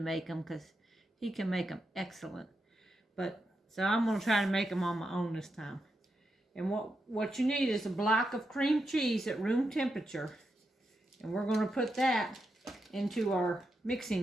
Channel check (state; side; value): normal; both; correlation 0.85